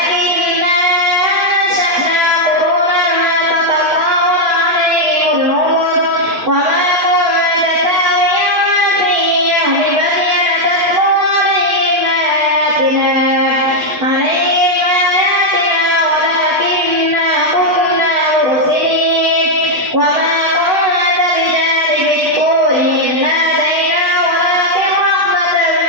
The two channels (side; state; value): left; late; 8.2 ms